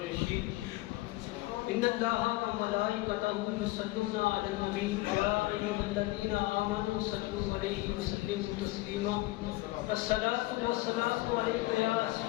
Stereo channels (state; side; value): quieter; right; 19.6 dB